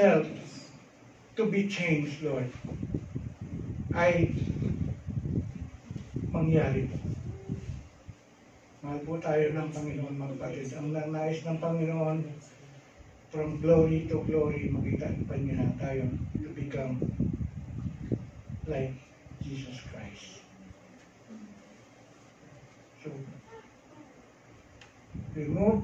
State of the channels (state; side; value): identical; both; correlation 1.00